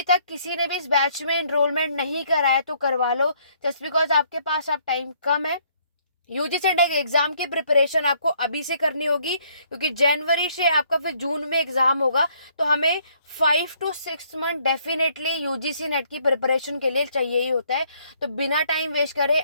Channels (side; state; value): both; inverted; correlation -0.66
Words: तक किसी ने भी इस बैच में एनरोलमेंट नहीं कराया तो करवा लो, जस्ट बिकॉज आपके पास अब टाइम कम है। यूजीसी नेट एग्जाम की प्रिपरेशन आपको अभी से करनी होगी क्योंकि जनवरी से आपका फिर जून में एग्जाम होगा। तो हमें 5 to 6 month definitely UGC net की प्रिपरेशन के लिए चाहिए ही होता है। तो बिना टाइम वेस्ट करे